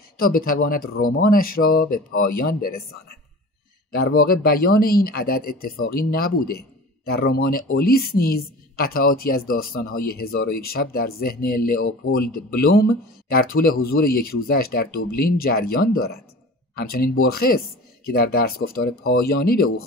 تا بتواند رمانش را به پایان برساند. در واقع بیان این عدد اتفاقی نبوده. در رمان اولیس نیز قطعاتی از داستان‌های 1001 شب در ذهن لئوپولد بلوم در طول حضور یک روزش در دوبلین جریان دارد. همچنین برخس که در درس گفتار پایانی به او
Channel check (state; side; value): normal; both; correlation 0.38